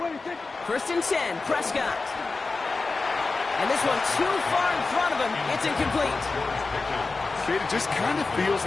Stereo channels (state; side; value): quieter; right; 3.9 dB